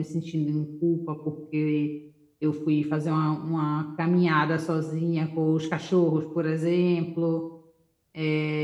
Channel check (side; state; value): both; identical; correlation 1.00